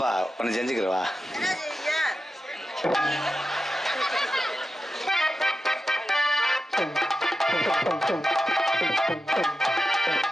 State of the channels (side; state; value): both; normal; correlation 0.91